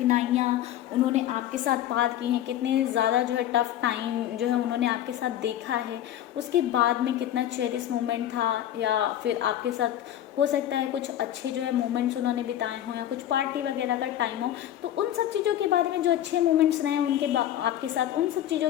उन्होंने आपके साथ पार की हैं, कितने ज़्यादा जो है टफ टाइम जो है उन्होंने आपके साथ देखा है, उसके बाद में कितना चेरिश मोमेंट था, या फिर आपके साथ हो सकता है कुछ अच्छे जो है मोमेंट्स उन्होंने बिताए हों, या कुछ पार्टी वगैरह का टाइम हो, तो उन सब चीज़ों के बारे में, जो अच्छे मोमेंट्स रहे उनके आपके साथ, उन सब चीज़ों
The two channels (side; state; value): right; quieter; 11.9 dB